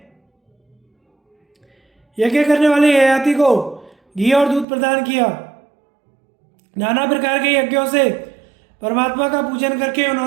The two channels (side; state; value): left; drops out; at 4.7 s